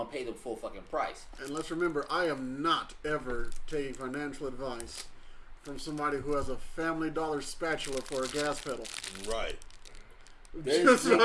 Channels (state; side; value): identical; both; correlation 1.00